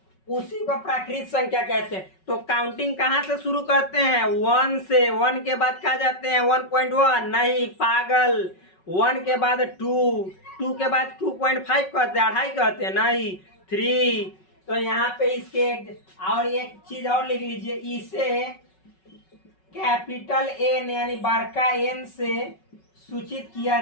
उसी को प्राकृत संख्या कहते हैं। तो काउंटिंग कहाँ से शुरू करते हैं? 1 से। 1 के बाद कहाँ जाते हैं? 1.1 नहीं पागल, 1 के बाद 2, 2 के बाद 2.5 कहते हैं, 2.5 कहते हैं नहीं, 3। तो यहाँ पे इसके और एक चीज और लिख लीजिए, इसे कैपिटल N यानी बड़का N से सूचित किया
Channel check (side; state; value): right; late; 5.4 ms